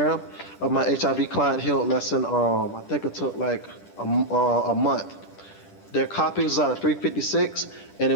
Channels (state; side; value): late; right; 10 ms